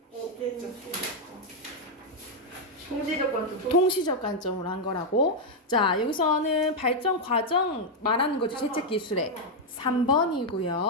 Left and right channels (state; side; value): normal; both; correlation 0.00